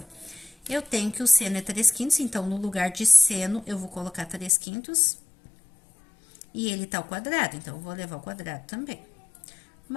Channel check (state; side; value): drops out; right; at 4.5 s